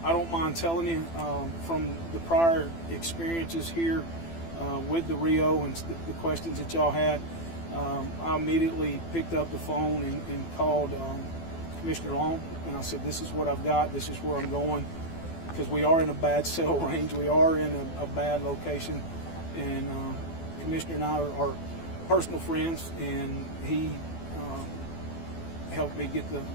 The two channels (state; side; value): late; right; 12 ms